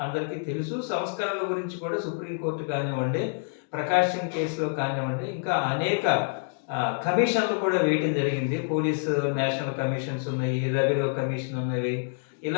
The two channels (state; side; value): silent; right; digital silence